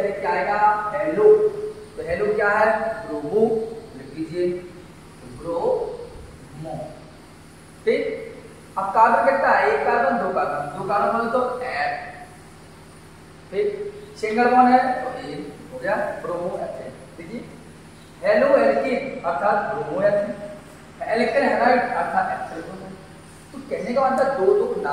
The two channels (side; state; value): both; identical; correlation 1.00